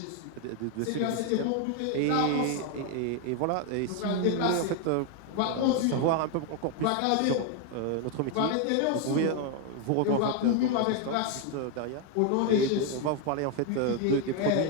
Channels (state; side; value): different; both; correlation 0.01